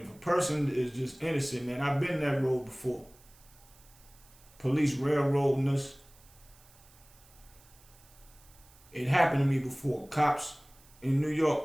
a person is just innocent, man, I've been that road before. Police railroading us. It happened to me before. Cops in New York,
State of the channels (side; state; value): right; noise; hiss, 26 dB below the sound